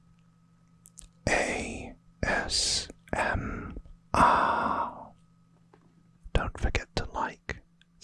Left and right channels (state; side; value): identical; both; correlation 1.00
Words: ASMR. Don't forget to like,